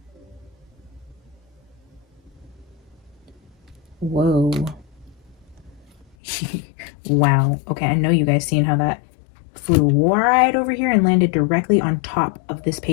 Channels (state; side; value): drops out; right; at 6.2 s